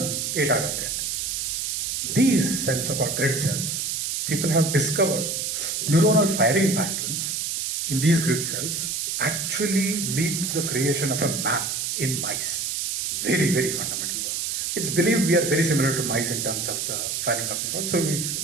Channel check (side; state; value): right; noise; hiss, 1 dB below the sound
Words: ಏಟಾಗುತ್ತೆ ಅಂತ. These cells are called grid cells. People have discovered neuronal firing patterns in these grid cells actually lead to the creation of a map in mice. Very fundamental work. It's believed we are very similar to mice in terms of the firing of neurons. So